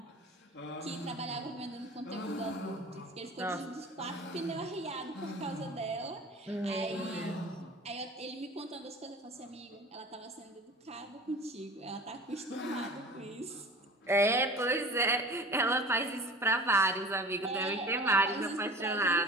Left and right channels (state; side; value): normal; both; correlation 0.40